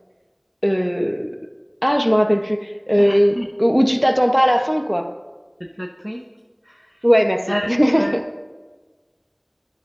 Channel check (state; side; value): identical; both; correlation 1.00